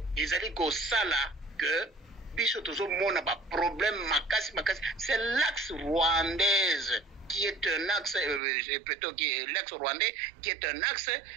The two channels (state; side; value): drops out; left; at 8.4 s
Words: ils allaient go sala que Bishotozo Mona ba problème makasi. C'est l'axe rwandaise qui est un axe, plutôt l'axe rwandais, qui est un axe